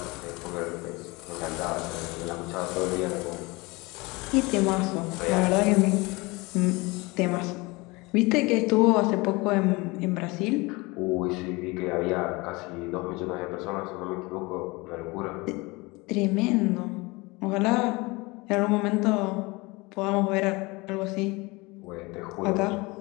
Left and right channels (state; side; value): quieter; right; 24.4 dB